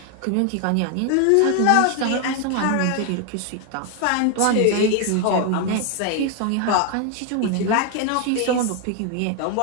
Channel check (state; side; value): different; both; correlation 0.01